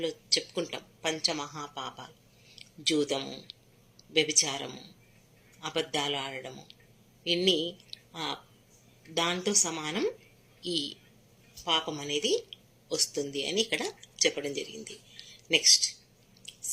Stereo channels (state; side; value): identical; both; correlation 1.00